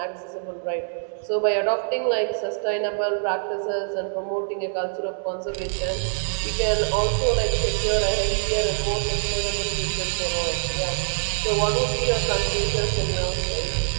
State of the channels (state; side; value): silent; left; digital silence